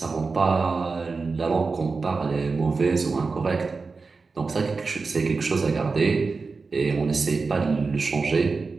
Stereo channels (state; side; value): quieter; left; 4.3 dB